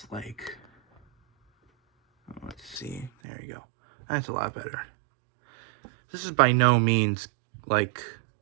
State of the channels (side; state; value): left; drops out; at 3.1 s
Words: like, let's see, there you go. That's a lot better. This is by no means like